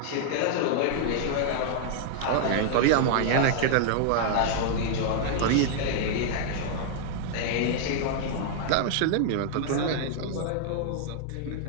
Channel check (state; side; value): different; both; correlation -0.01